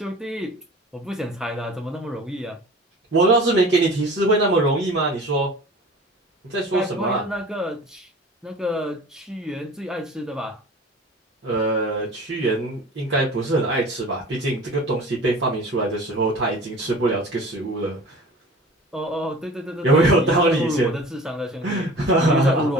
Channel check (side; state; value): both; normal; correlation 0.41